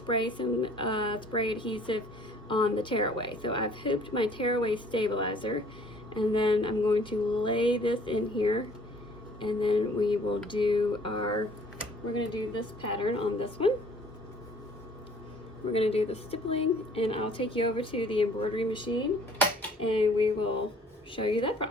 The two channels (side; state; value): both; normal; correlation 0.55